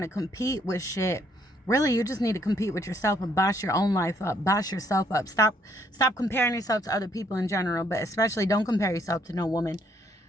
to compete with shit. Really, you just need to compete with yourself and boss your own life up. Boss yourself up. Stop comparing yourself to other people in general, but especially don't compare yourself to no woman.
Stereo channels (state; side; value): normal; both; correlation 0.69